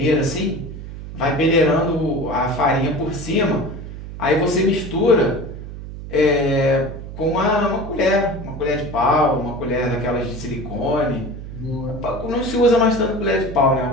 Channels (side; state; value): right; noise; hum, 11 dB below the sound